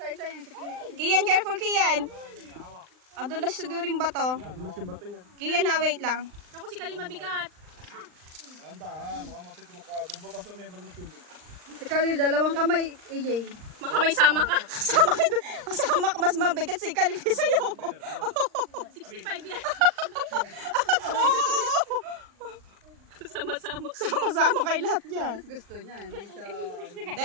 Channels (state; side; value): late; left; 39 ms